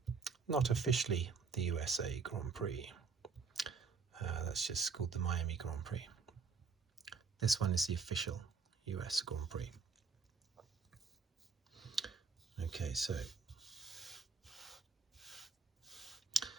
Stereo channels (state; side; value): quieter; left; 4.9 dB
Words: not officially the USA Grand Prix. That's just called the Miami Grand Prix. This one is the official US Grand Prix. Okay, so